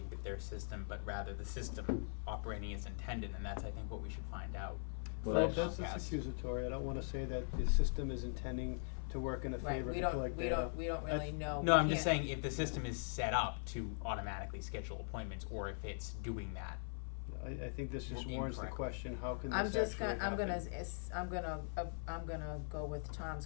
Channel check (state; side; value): silent; right; 50 dB below the other